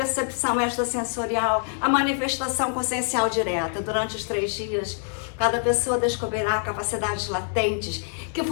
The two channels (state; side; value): silent; right; 62 dB below the other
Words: extrasensorial, a manifestação consciencial direta. Durante os 3 dias, cada pessoa descobrirá capacidades latentes que